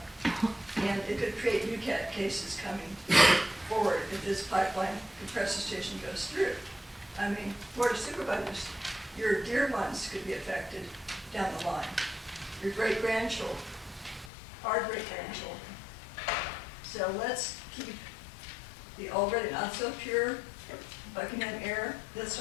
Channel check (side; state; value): right; drops out; at 14.3 s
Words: And it could create new cases coming forward if this pipeline compressor station goes through. I mean, Board of Supervisors, your dear ones could be affected down the line. Your great-grandchildren, our great-grandchildren. So let's keep the already not so pure Buckingham air. Let's